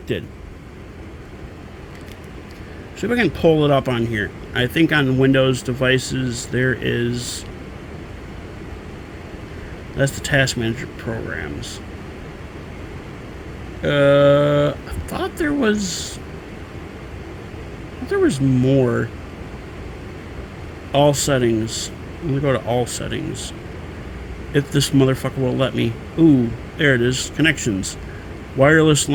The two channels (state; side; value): identical; both; correlation 1.00